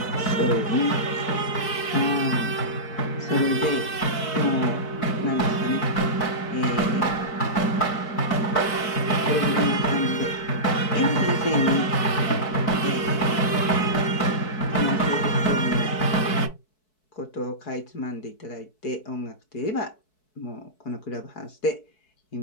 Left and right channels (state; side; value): late; right; 4.6 ms